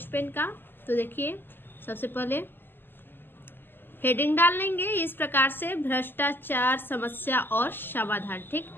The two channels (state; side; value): late; right; 0.096 ms